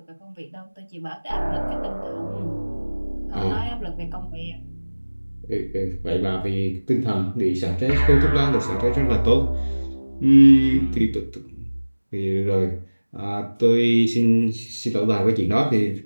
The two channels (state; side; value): inverted; both; correlation -1.00